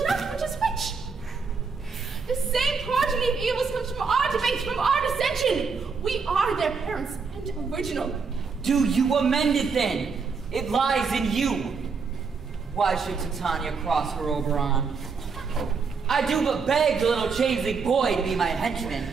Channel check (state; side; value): quieter; left; 5.1 dB